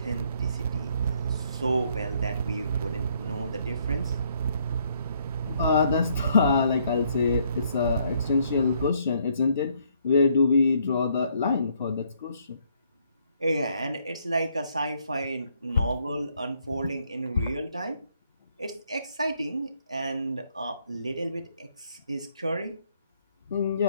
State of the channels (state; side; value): inverted; both; correlation -0.69